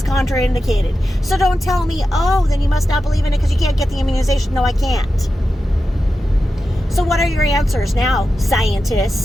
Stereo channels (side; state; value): both; normal; correlation 0.91